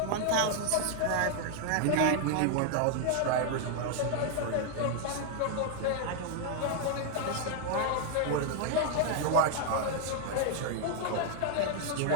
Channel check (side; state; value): both; different; correlation 0.00